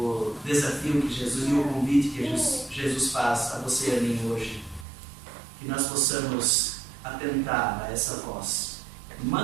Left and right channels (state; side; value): drops out; left; at 4.9 s